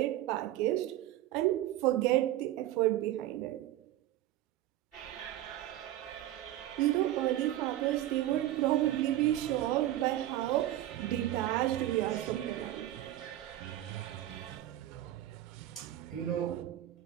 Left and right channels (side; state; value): left; quieter; 14.0 dB